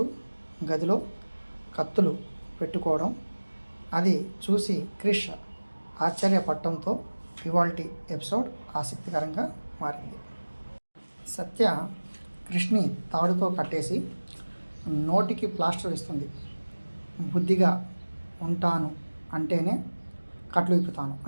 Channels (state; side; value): inverted; both; correlation -1.00